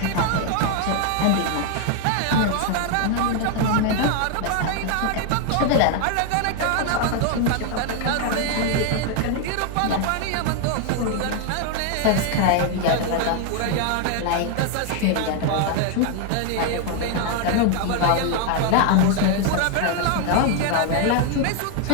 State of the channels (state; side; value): different; both; correlation 0.00